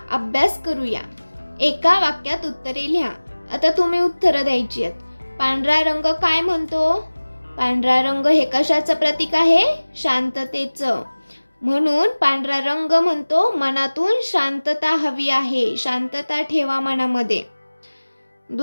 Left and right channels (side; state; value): both; inverted; correlation -1.00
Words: अभ्यास करूया. एका वाक्यात उत्तरे लिहा. आता तुम्ही उत्तरं द्यायची आहेत. पांढरा रंग काय म्हणतो? पांढरा रंग हे कशाचं प्रतीक आहे? शांततेचं. म्हणून पांढरा रंग म्हणतो मनातून शांतता हवी आहे. शांतता ठेवा मनामध्ये.